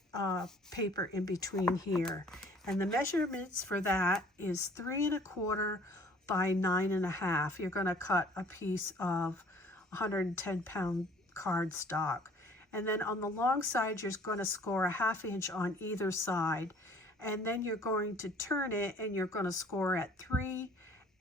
paper in between here. And the measurements for that is 3 1/4 by 9 1/2. You're going to cut a piece of 110-pound cardstock. And then on the long side, you're going to score a 1/2 inch on either side. And then you're going to turn it, and you're going to score at 3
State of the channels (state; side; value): normal; both; correlation 0.54